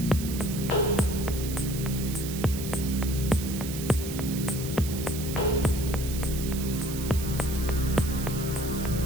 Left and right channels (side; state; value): right; noise; hiss, 9 dB below the sound